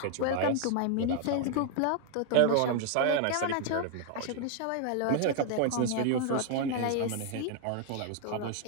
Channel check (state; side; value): different; both; correlation 0.00